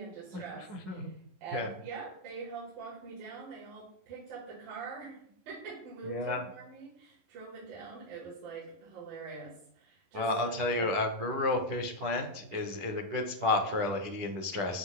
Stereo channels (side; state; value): left; late; 10 ms